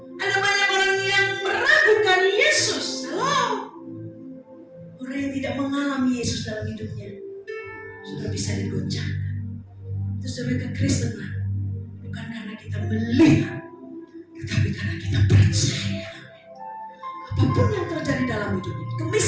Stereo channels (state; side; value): identical; both; correlation 1.00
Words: Ada banyak orang yang meragukan Yesus. Halo, orang yang tidak mengalami Yesus dalam hidupnya sudah bisa digoncangkan. Itu sebagai kekristenan bukan karena kita melihat, tetapi karena kita percaya. Apapun yang terjadi dalam hidup ini,